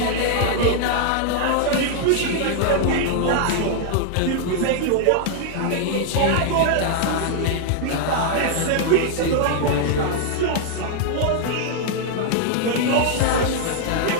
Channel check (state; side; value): different; both; correlation 0.00